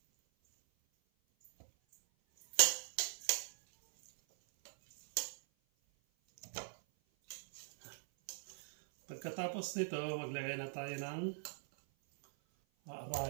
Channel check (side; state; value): left; silent; 50 dB below the other